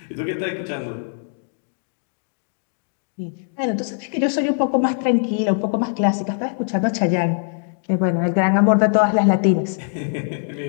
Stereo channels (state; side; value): silent; right; 57 dB below the other